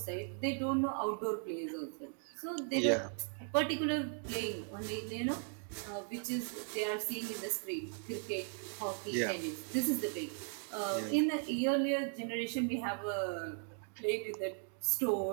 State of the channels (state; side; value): silent; left; 53 dB below the other